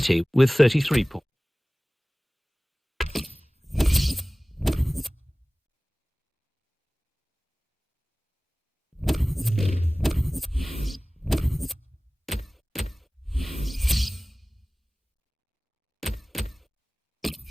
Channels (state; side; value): normal; both; correlation 0.98